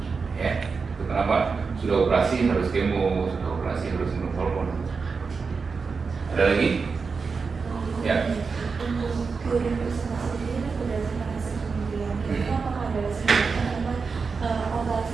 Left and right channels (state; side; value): quieter; left; 5.0 dB